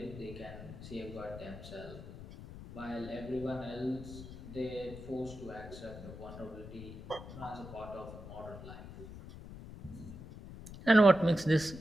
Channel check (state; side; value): noise; left; rumble, 13 dB below the sound